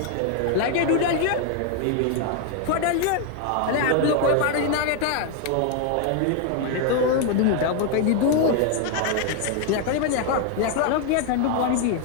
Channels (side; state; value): both; different; correlation 0.00